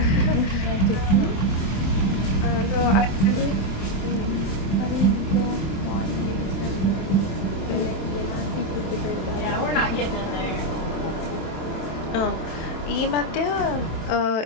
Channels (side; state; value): right; late; 27 ms